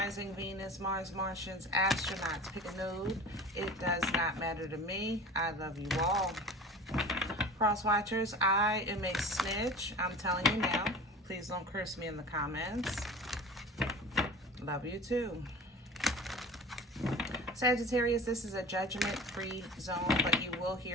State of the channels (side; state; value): both; normal; correlation 0.38